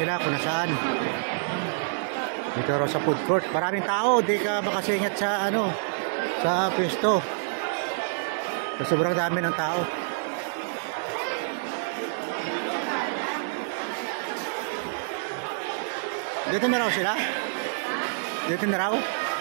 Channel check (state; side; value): silent; left; digital silence